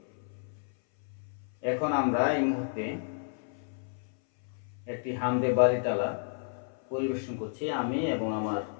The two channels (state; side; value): silent; right; 57 dB below the other